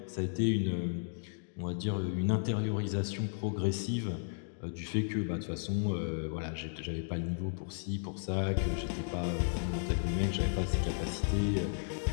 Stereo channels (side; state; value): right; silent; digital silence